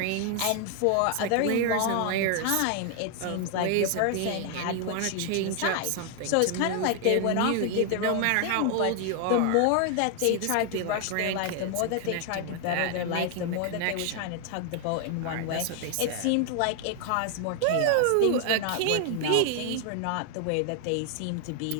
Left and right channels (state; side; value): different; both; correlation 0.00